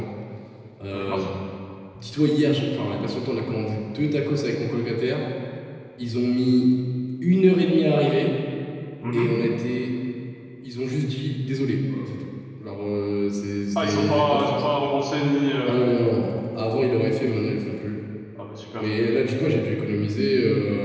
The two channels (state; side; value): identical; both; correlation 1.00